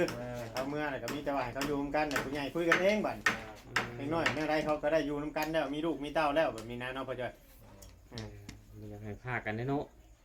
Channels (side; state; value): both; identical; correlation 1.00